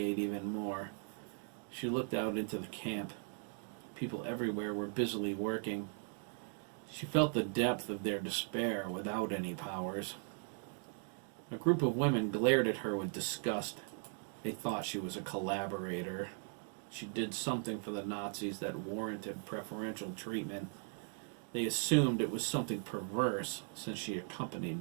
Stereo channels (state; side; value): silent; left; 52 dB below the other